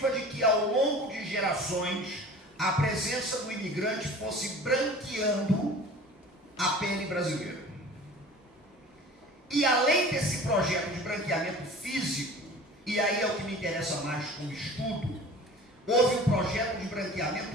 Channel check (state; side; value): normal; both; correlation 0.42